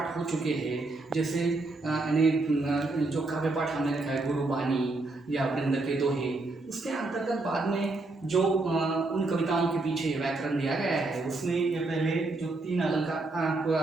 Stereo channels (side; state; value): left; quieter; 3.2 dB